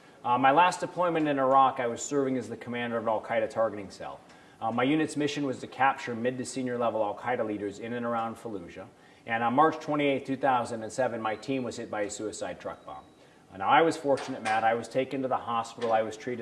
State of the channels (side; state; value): both; identical; correlation 1.00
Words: My last deployment in Iraq, I was serving as the commander of an al-Qaeda targeting cell. My unit's mission was to capture mid to senior level al-Qaeda leaders in and around Fallujah. And on March 28, 2007, my team was hit by a suicide truck bomb. Now, I was fortunate, Matt. I was taken to the hospital. I was